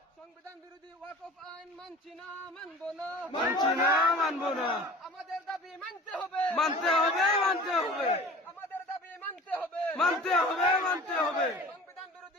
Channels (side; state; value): both; normal; correlation 0.42